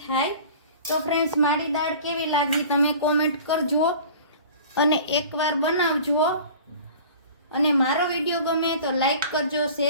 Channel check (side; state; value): both; inverted; correlation -0.42